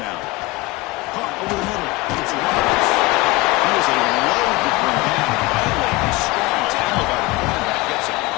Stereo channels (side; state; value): right; quieter; 21.6 dB